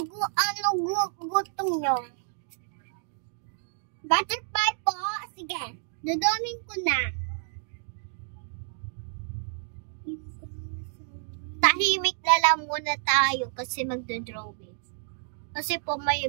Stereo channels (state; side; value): silent; left; digital silence